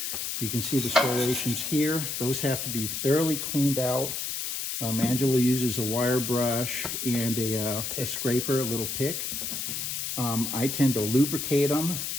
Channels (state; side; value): noise; left; hiss, 3 dB below the sound